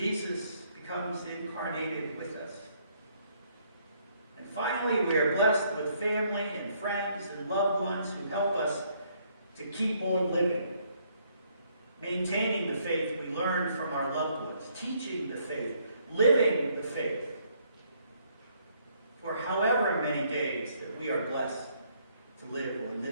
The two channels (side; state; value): both; inverted; correlation -0.69